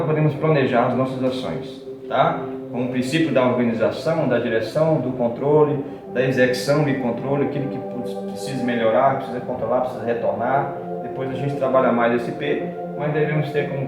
planejar as nossas ações, tá? Com o princípio da organização, da direção, do controle, da execução e controle, aquilo que precisa melhorar, precisa controlar, precisa retornar. Depois a gente trabalha mais esse P, mas devemos ter como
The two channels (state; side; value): identical; both; correlation 1.00